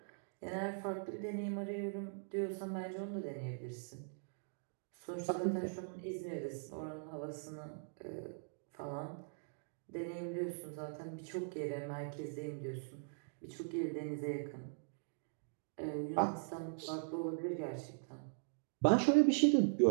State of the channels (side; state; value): left; silent; digital silence